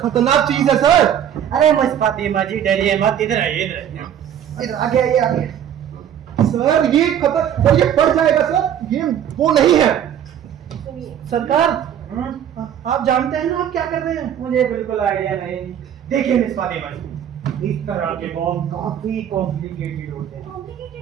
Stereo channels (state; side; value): quieter; left; 9.7 dB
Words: चीज है सर। अरे मिस फातिमा जी डरिए मत, इधर आइए, इधर आइए। इधर आगे आइए, आगे। सर ये सर ये बढ़ जाएगा सर, ये वो नहीं है। सुनिए सरकार, आप जानते हैं ना आप क्या कर रहे हैं? मुझे बिल्कुल आइडिया नहीं। देखिए मिस फातिमा जी, इस तरह के बॉम्ब काफी कॉम्प्लिकेटेड होते हैं।